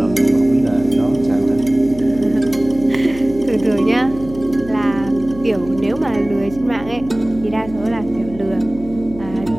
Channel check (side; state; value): left; noise; hum, 15 dB below the sound